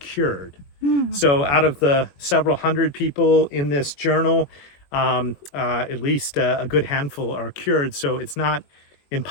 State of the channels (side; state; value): right; late; 21 ms